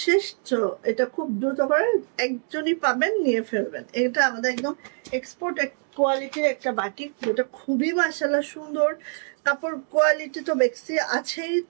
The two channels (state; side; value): silent; left; 62 dB below the other